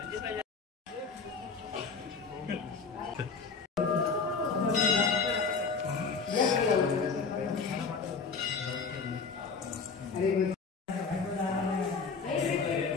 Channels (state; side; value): quieter; right; 5.0 dB